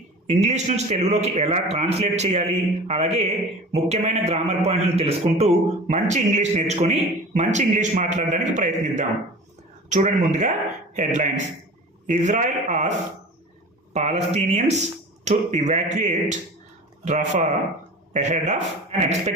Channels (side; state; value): both; normal; correlation 0.38